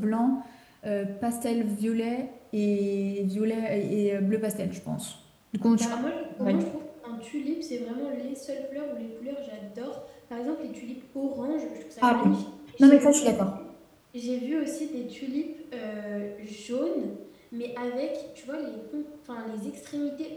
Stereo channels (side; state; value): both; identical; correlation 1.00